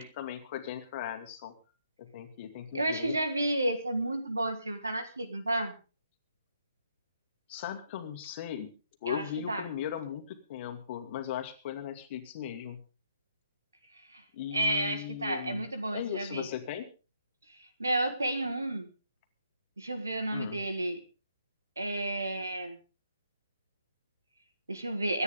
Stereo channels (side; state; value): both; inverted; correlation -0.73